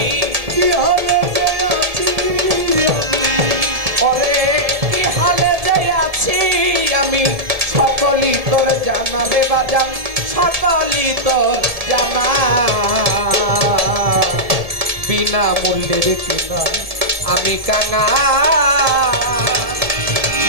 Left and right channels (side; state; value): left; late; 1.7 ms